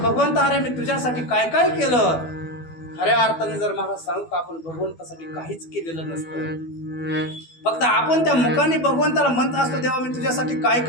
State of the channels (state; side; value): late; right; 12 ms